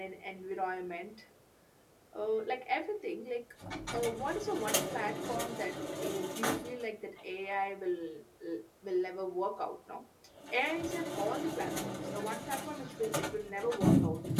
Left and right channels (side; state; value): both; identical; correlation 1.00